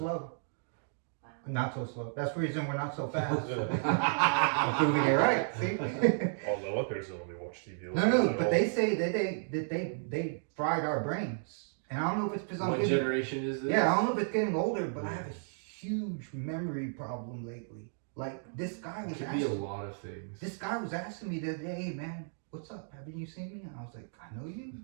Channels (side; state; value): left; silent; digital silence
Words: Wow. Not so slow. That's the reason we're not so fast. Yeah. Proving it right. See? Although my parents don't really watch TV. No, but they say that they fried our brains, and I don't know if it's because I'm What getting, generation is this? yeah, I don't know if it's getting older, but I have a huge memory problem lately. Like this guy It was could be a asking, lot of things. this guy was asking me the other day, hey man, what's up? Haven't you seen me? And I was like, I know you.